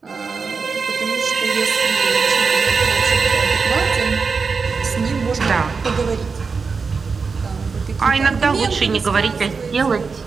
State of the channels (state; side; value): quieter; left; 5.0 dB